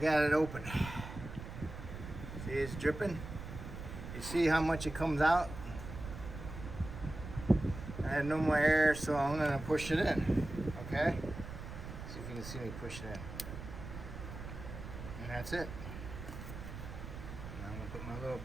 it open. See, it's dripping. You see how much it comes out? I had no more air, so I'm gonna push it in. Okay? See if you can see me push it in. And that's it. Now I'm gonna put my little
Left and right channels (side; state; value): right; noise; rumble, 10 dB below the sound